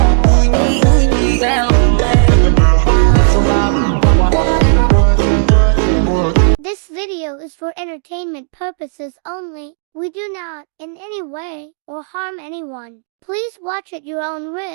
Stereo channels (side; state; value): left; silent; digital silence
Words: This video is for entertainment purposes only. We do not, in any way, or harm anyone. Please watch at your own